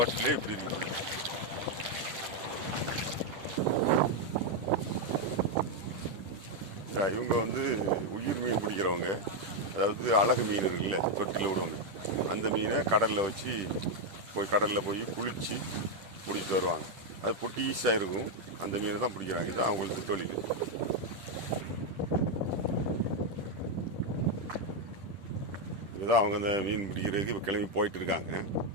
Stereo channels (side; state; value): left; late; 10 ms